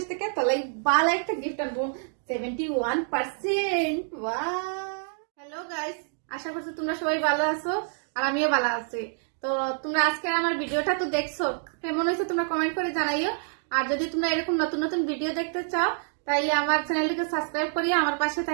থেকে, তোর লাগি ভালো একটা গিফট আনবো, 71%। হ্যালো গাইস, আশা করছি তোমরা সবাই ভালো আছো আর আমিও ভালো আছি। তো তোমরা আজকে আমার ভিডিওটা তো দেখছো, কেমন হয়েছে তোমরা কমেন্ট করে জানাইও। আর যদি তোমরা এরকম নতুন নতুন ভিডিও দেখতে চাও তাইলে আমার চ্যানেলটিকে সাবস্ক্রাইব করিয়ে আমার পাশে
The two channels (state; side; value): silent; left; 60 dB below the other